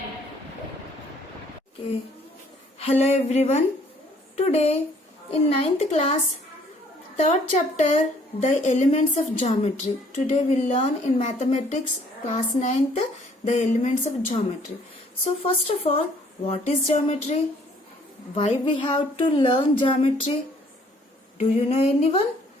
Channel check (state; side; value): normal; both; correlation 0.61